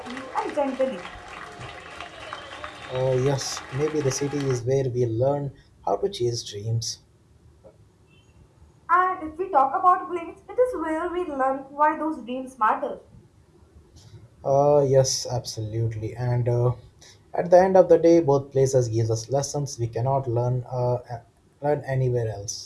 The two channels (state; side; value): identical; both; correlation 1.00